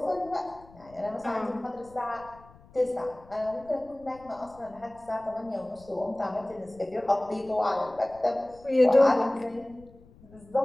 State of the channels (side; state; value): left; noise; rumble, 24 dB below the sound